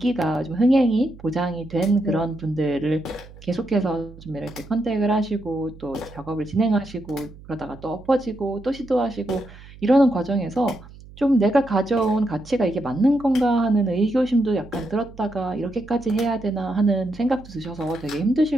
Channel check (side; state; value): right; noise; hum, 19 dB below the sound